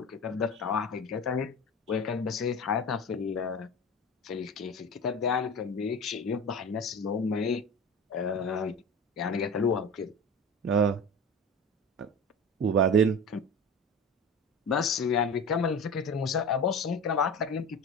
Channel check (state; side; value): normal; both; correlation 0.31